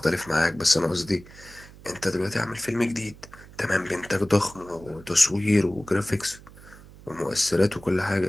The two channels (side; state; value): right; noise; hum, 20 dB below the sound